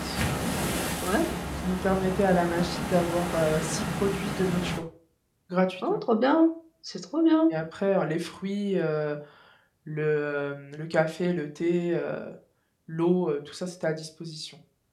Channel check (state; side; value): identical; both; correlation 1.00